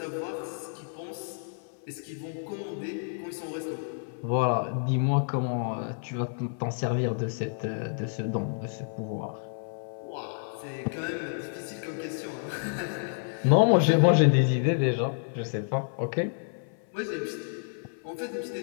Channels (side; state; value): right; silent; 57 dB below the other